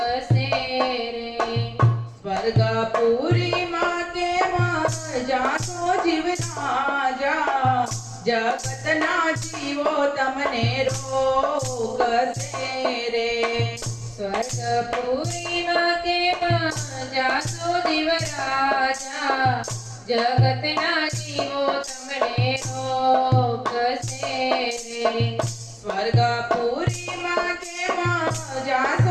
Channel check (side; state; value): both; identical; correlation 1.00